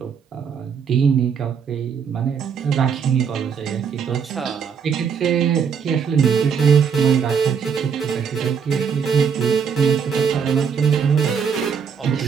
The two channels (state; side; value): quieter; left; 6.7 dB